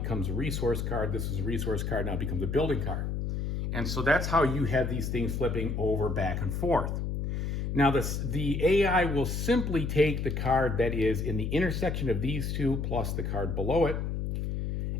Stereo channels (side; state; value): left; noise; hum, 2 dB below the sound